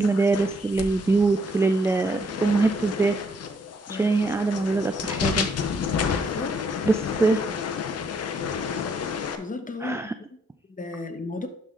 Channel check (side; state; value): both; normal; correlation 0.71